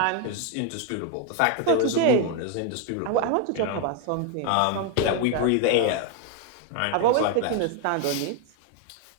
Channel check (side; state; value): both; different; correlation 0.01